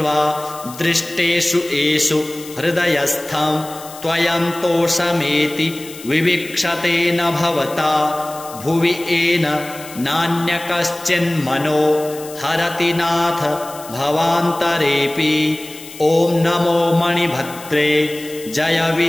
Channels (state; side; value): noise; left; hiss, 16 dB below the sound